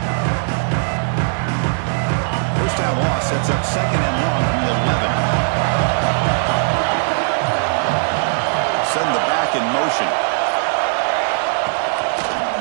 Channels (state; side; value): silent; left; digital silence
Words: First down loss sets up second and long from the 11. Send the back in motion.